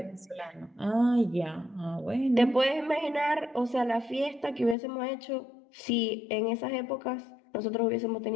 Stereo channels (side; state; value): right; drops out; at 4.8 s